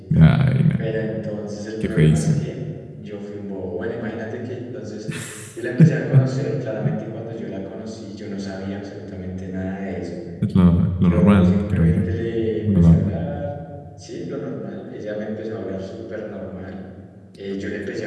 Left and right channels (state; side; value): identical; both; correlation 1.00